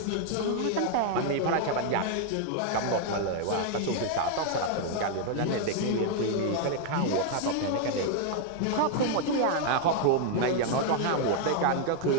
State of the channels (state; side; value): different; both; correlation 0.00